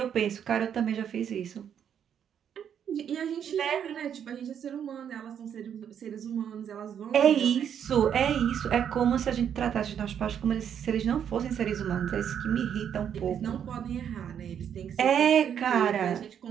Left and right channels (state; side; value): quieter; left; 8.6 dB